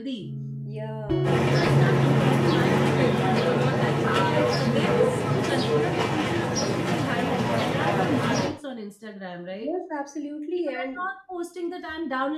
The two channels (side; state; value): both; identical; correlation 1.00